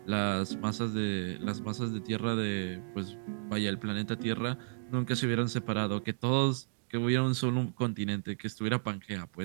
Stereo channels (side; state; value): left; silent; digital silence